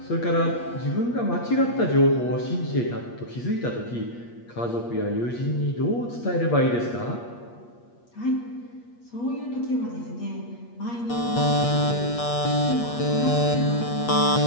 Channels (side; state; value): right; late; 8.4 ms